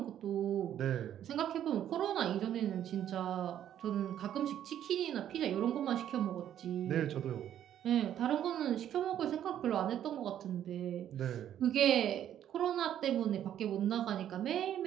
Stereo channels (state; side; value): quieter; left; 10.7 dB